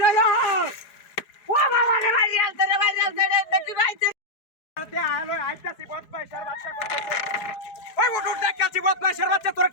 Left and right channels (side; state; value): right; late; 4.7 ms